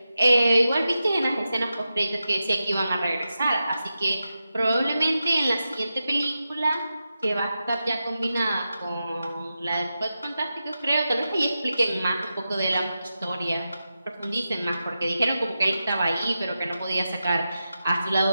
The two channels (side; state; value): both; inverted; correlation -0.90